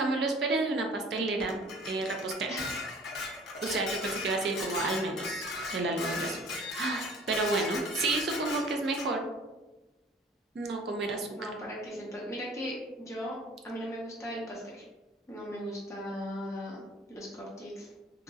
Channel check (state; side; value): normal; both; correlation 0.49